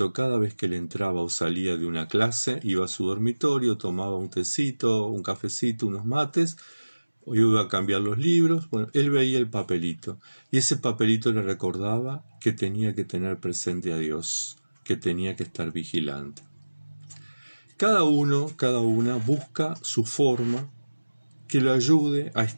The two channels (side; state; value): both; inverted; correlation -1.00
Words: Cada vez que él entraba o salía de una clase, iba a su dormitorio, tomaba un tecito, un cafecito, unos mates, o iba a cambiar los libros. Bueno, él veía el papelito y ese papelito le recordaba que tenía que tener presente a Dios, que tenía que estar vigilante. Cada uno, cada una busca su forma que lo ayude a